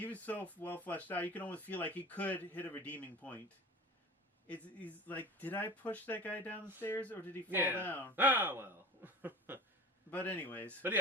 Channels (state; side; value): normal; both; correlation 0.36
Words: was so well fleshed out. You can almost feel like he could hit a redeeming point. He's like, did I push that guy down the stairs or did he fall down? Ah, well. But anyways. But